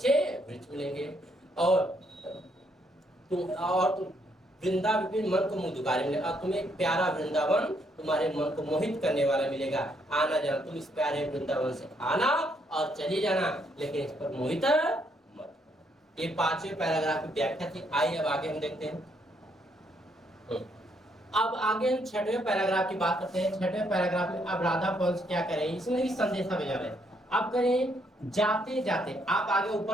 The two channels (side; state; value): both; normal; correlation 0.72